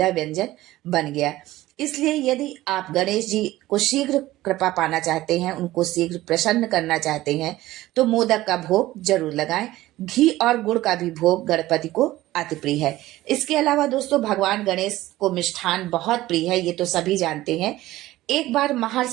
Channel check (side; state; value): left; quieter; 16.5 dB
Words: व्यंजन बन गया। इसलिए यदि आप गणेश जी को शीघ्र कृपा पाना चाहते हैं, उनको शीघ्र प्रसन्न करना चाहते हैं, तो मोदक का भोग जरूर लगाएं। घी और गुड़ का भी भोग गणपति को अति प्रिय है। इसके अलावा दोस्तों, भगवान गणेश को मिष्ठान बहुत प्रिय है, ये तो सभी जानते हैं। एक बार